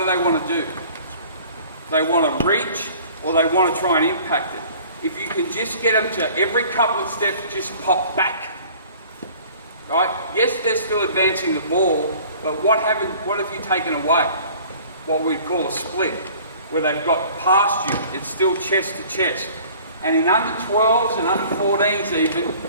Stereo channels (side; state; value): both; inverted; correlation -0.49